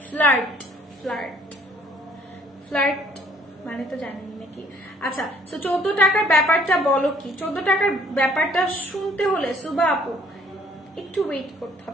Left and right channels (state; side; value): normal; both; correlation 0.61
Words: ফ্লার্ট ফ্লার্ট ফ্লার্ট মানে তো জানেন নাকি? আচ্ছা তো 14 টাকার ব্যাপারটা বলো কি? 14 টাকার ব্যাপারটা শুনতে হলে সুবা আপু একটু ওয়েট করতে